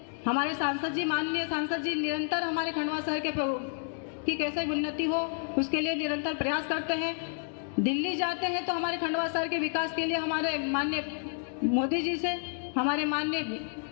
हमारे सांसद जी, माननीय सांसद जी निरंतर हमारे खंडवा शहर की कैसे उन्नति हो उसके लिए निरंतर प्रयास करते हैं। दिल्ली जाते हैं तो हमारे खंडवा शहर के विकास के लिए हमारे माननीय मोदी जी से, हमारे माननीय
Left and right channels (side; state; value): right; silent; 57 dB below the other